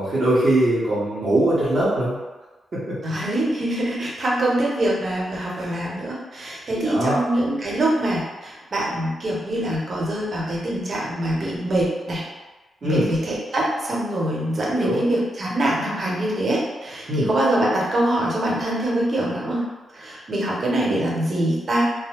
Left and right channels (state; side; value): normal; both; correlation 0.83